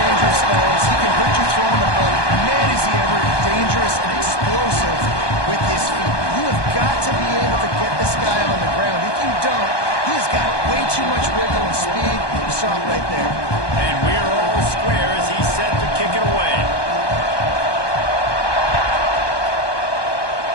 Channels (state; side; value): late; right; 1.2 ms